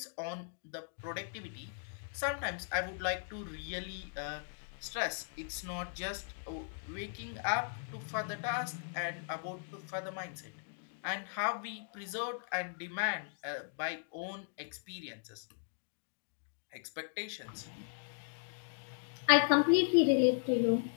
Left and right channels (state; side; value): silent; right; digital silence